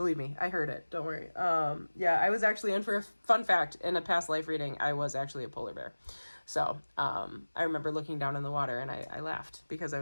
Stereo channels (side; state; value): both; inverted; correlation -1.00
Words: me, I heard it. Don't worry. Yeah, I was actually in for a fun fact in a past life reading. I was actually a polar bear. So I remember looking down in the water and I laughed because I